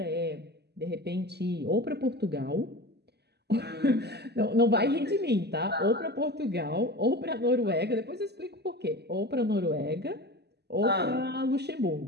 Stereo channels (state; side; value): late; left; 0.48 ms